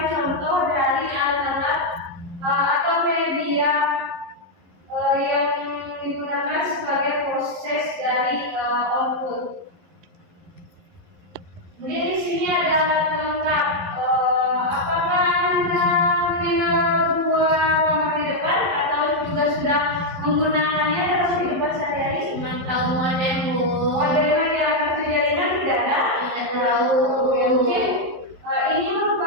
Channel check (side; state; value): left; late; 11 ms